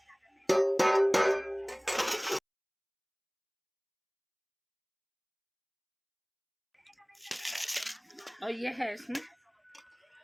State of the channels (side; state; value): both; identical; correlation 1.00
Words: और ये है इसमें